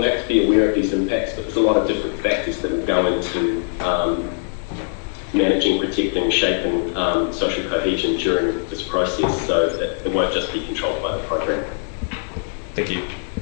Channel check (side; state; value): right; silent; digital silence